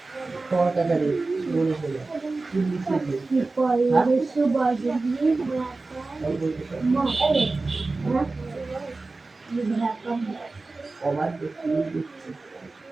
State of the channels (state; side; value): quieter; left; 3.5 dB